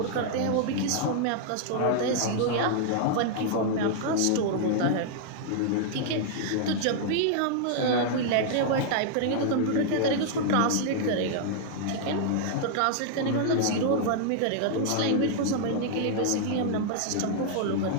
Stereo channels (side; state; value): both; different; correlation -0.01